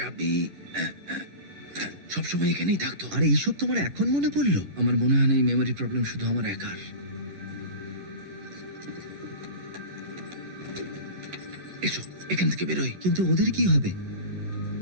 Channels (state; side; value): late; left; 11 ms